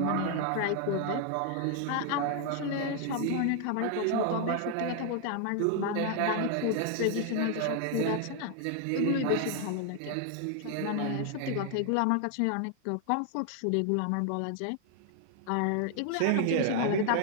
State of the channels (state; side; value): different; both; correlation 0.00